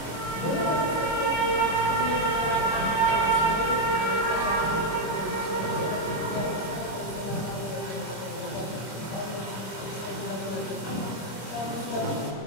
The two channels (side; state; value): right; late; 25 ms